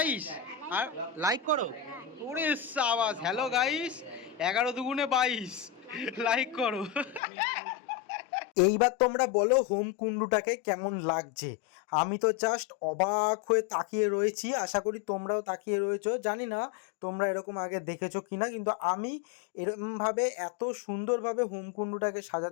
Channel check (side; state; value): right; drops out; at 7.2 s